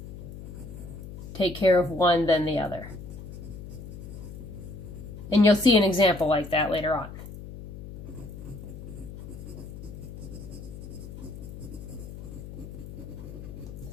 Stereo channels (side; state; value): left; noise; hum, 12 dB below the sound